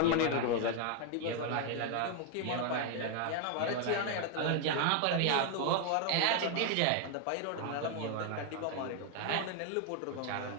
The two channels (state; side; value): different; both; correlation 0.01